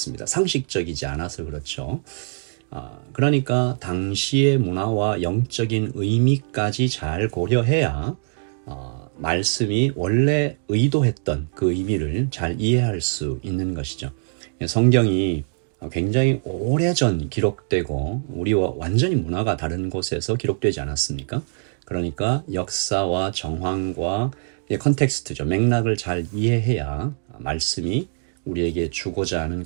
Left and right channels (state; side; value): silent; left; digital silence